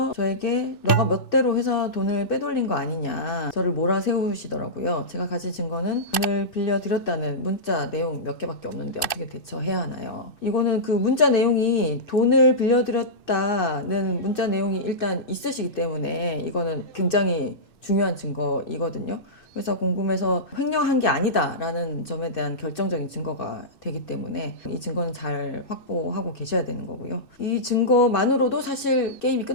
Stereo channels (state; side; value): late; right; 2.6 ms